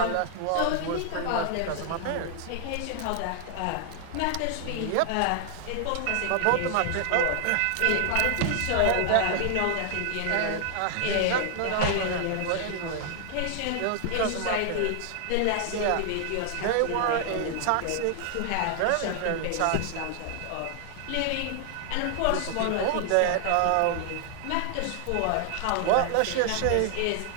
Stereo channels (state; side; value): different; both; correlation 0.00